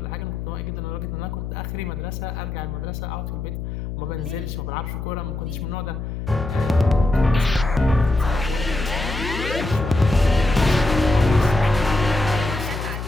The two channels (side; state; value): left; noise; hum, 6 dB below the sound